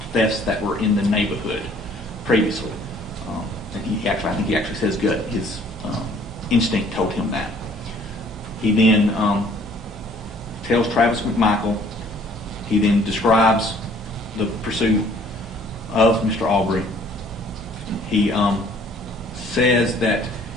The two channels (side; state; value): both; normal; correlation 0.57